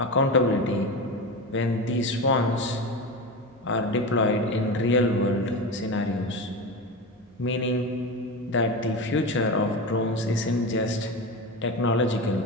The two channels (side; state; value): both; normal; correlation 0.23